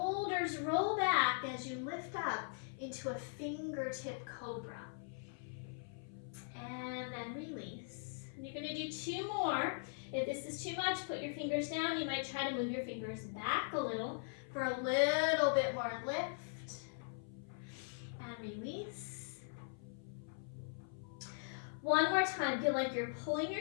roll back as you lift up into a fingertip cobra. And then release. And you're going to do 2 more. If this is too much, put your fingers down. You might try to move your fingers back a little for a little bit more lift. And release. One more time. Feel like you're pulling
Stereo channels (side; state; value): right; silent; 51 dB below the other